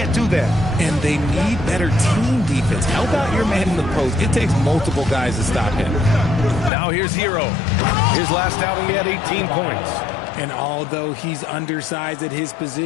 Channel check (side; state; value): right; drops out; at 6.7 s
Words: do that. And they need better team defense. Help out your man in the post. It takes multiple guys to stop him. Now here's Hero. His last outing, he had 18 points. And although he's undersized at his